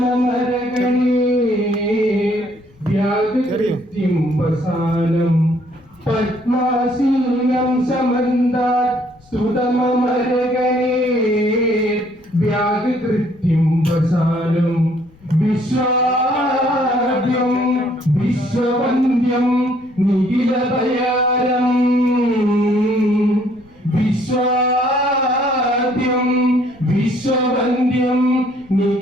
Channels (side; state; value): left; noise; rumble, 29 dB below the sound